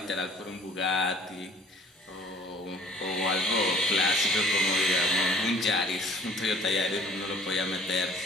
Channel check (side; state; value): both; normal; correlation 0.52